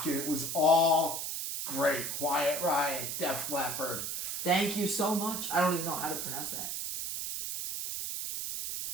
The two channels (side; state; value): right; noise; hiss, 3 dB below the sound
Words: And it was all great. Quiet Riot, Def Leppard. Thank you so much. I don't even know how to pronounce that.